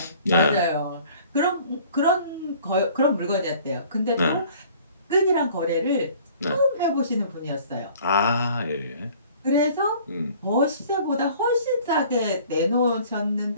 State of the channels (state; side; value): inverted; both; correlation -0.52